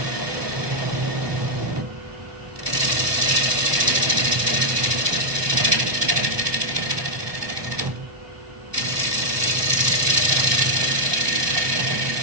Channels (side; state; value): left; late; 1.2 ms